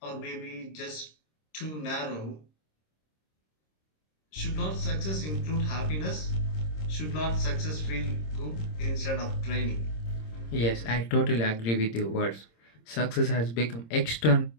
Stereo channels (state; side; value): late; right; 26 ms